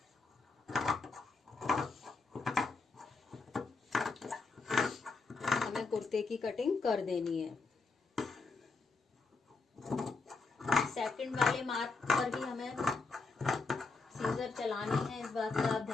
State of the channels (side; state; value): right; quieter; 4.0 dB